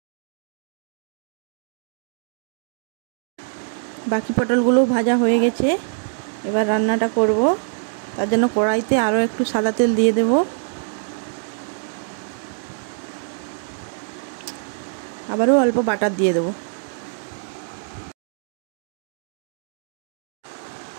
বাকি পটলগুলো ভাজা হয়ে গেছে, এবার রান্নাটা করব। তার জন্য কড়াইতে আরও একটু সাদা তেল দিয়ে দেব। আবারও অল্প বাটার দিয়ে দেব।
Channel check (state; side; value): silent; left; digital silence